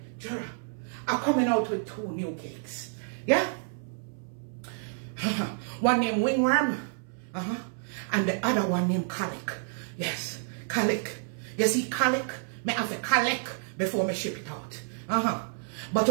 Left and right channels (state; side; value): silent; left; 58 dB below the other